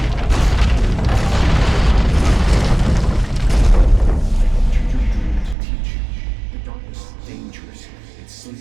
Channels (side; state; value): left; drops out; at 5.6 s